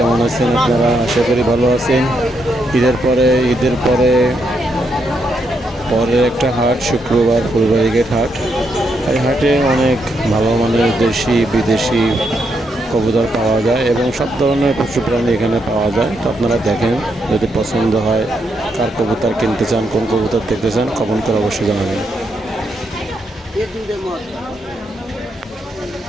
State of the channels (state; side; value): normal; both; correlation 0.79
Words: আছেন আপনারা? আশা করি ভালো আছেন। ঈদের পরে পরের একটা হাট, শুক্রবার ফুলবাড়ি গেট হাট। এই হাটে অনেক ভালো মানের দেশি বিদেশি কবুতর পাওয়া যায় এবং সব ধরনের পশু প্রাণী এখানে পাওয়া যায়। তো আপনারা দেখেন, যদি পছন্দ হয়, কার কবুতর কিনতে চান, কোন কবুতর দেখতে চান, কমেন্ট করে অবশ্যই জানাবেন।